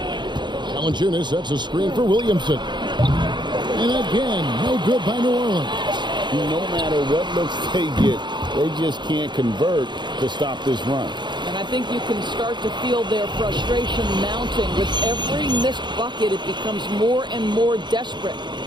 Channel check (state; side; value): late; left; 0.22 ms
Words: Valanciunas sets a screen for Williamson. And again, no good by New Orleans. No matter what looks they get, they just can't convert to stop this run. And I think you can start to feel their frustration mounting. With every missed bucket, it becomes more and more desperate.